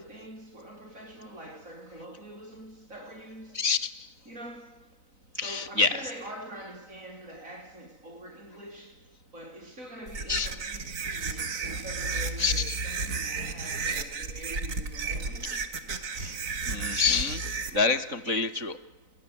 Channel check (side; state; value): left; late; 3.9 ms